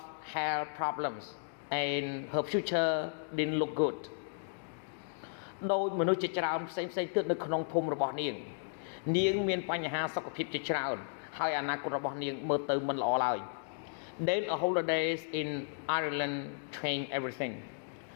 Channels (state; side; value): silent; right; digital silence